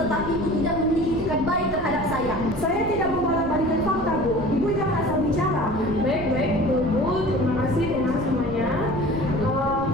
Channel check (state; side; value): noise; right; rumble, 11 dB below the sound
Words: Ibu tidak memiliki etikat baik terhadap saya. Saya tidak membolak-balikan fakta Bu. Ibu jangan asal bicara. Baik, Bu. Terima kasih dengan semuanya.